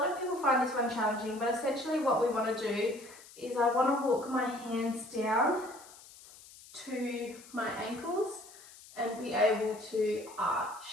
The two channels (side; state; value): left; noise; hiss, 20 dB below the sound